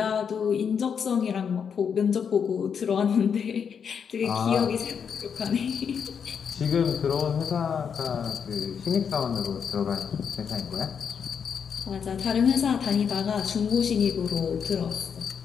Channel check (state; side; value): quieter; right; 7.0 dB